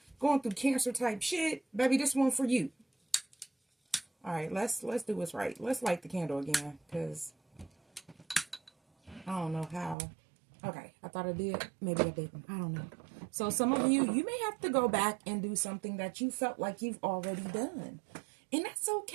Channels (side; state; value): left; drops out; at 10.0 s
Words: going through Cancer type shit, baby, this one for you. All right, let's do what's right. Let's light the candle again, because I don't know how. Okay, I thought I did. Maybe I didn't. I don't know. So some of you may have to go back and do something that you felt like you've already done. And that's